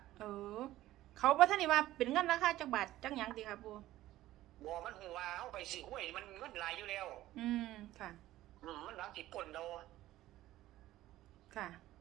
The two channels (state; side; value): quieter; left; 15.2 dB